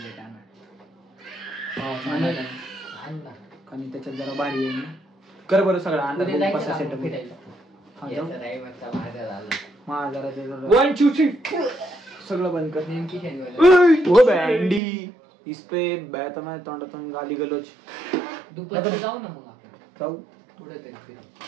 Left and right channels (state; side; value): drops out; left; at 14.8 s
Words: आणि त्याच्यात जरा भारी आहे ना कर बरं सगळं अंडा कसा सेटअप माझा वन टू थ्री सगळं बंद कर नेमकी शनिवार ओ बँडी इसपे बॅता नाही तोंडातून गाली गलोच दुपारी जाऊ ना मग आपण जाऊ थोडं तरी फिरू.